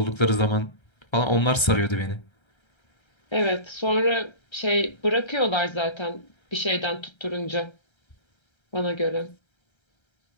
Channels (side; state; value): right; late; 1.3 ms